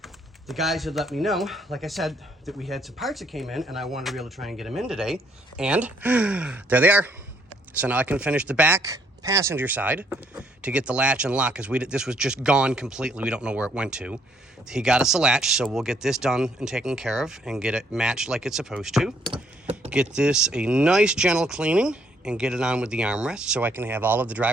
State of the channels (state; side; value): normal; both; correlation 0.68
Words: The guys had let me know, like I said, that we had some parts that came in, and I wanted to be able to try and get them in today. And there they are. So now I can finish the back passenger side to get the latch and lock, because this was just gone completely. We don't know where it went to. He got us a latch, so we'll get this done and taken care of and get it matched like it's supposed to. Get this a nice gentle cleaning and get it on with the armrest so I can have all of the